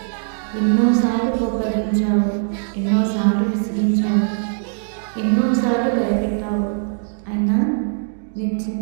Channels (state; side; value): silent; left; digital silence